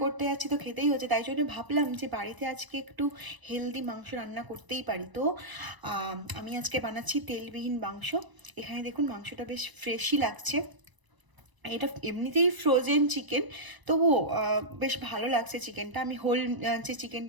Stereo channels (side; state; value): left; late; 1.0 ms